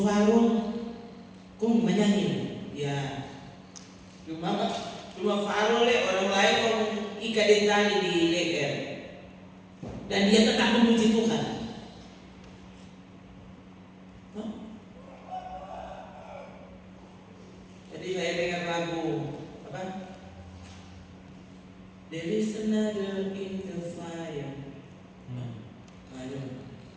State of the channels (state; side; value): identical; both; correlation 1.00